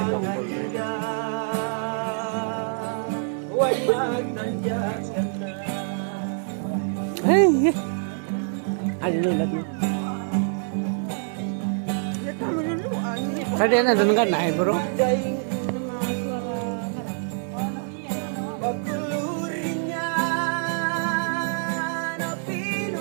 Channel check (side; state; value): left; silent; 61 dB below the other